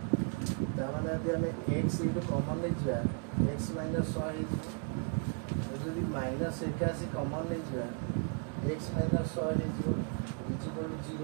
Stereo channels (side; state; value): left; quieter; 36.7 dB